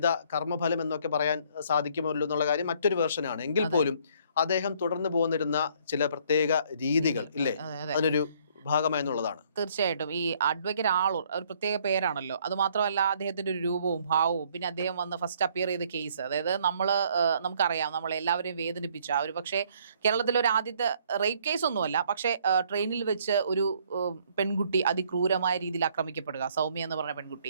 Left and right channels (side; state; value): both; inverted; correlation -0.63